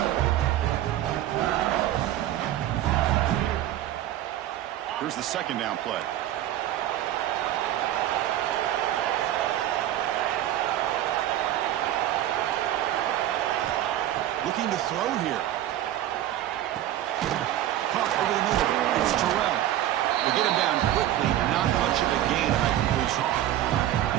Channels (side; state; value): left; quieter; 12.9 dB